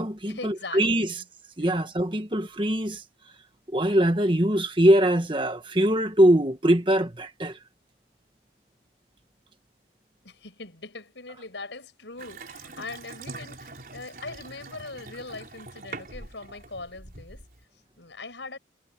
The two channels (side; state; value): both; normal; correlation 0.73